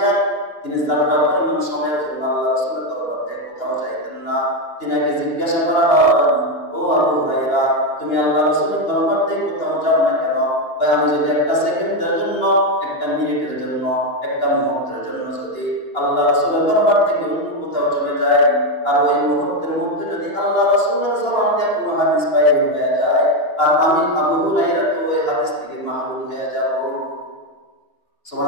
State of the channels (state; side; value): late; right; 2.9 ms